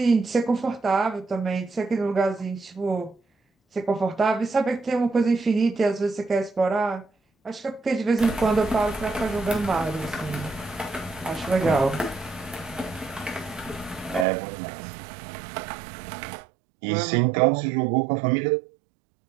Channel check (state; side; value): drops out; left; at 14.2 s